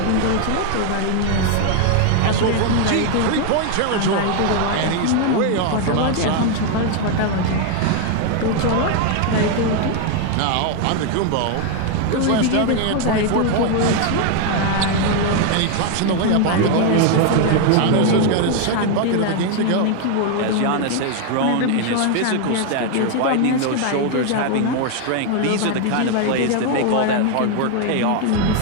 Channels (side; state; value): both; different; correlation 0.01